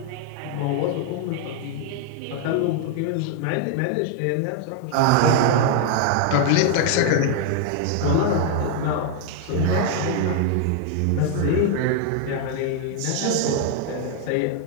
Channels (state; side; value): different; both; correlation 0.00